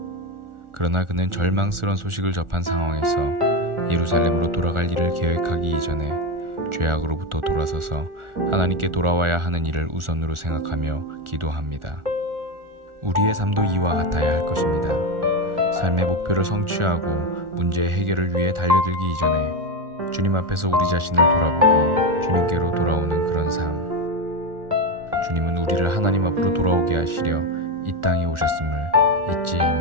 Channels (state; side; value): late; left; 1.4 ms